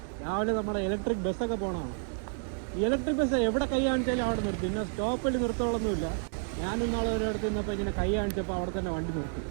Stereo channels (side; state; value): left; silent; digital silence